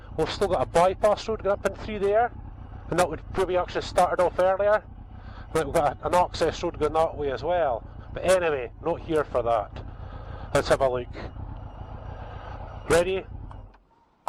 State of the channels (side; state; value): both; identical; correlation 1.00